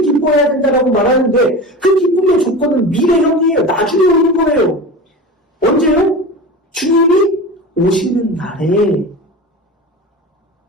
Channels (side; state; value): both; normal; correlation 0.30